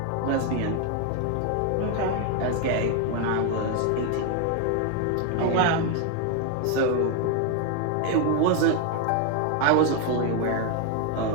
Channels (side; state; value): both; different; correlation 0.01